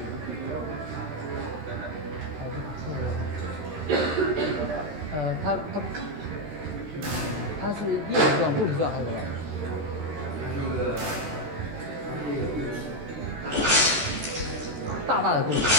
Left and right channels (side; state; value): left; late; 14 ms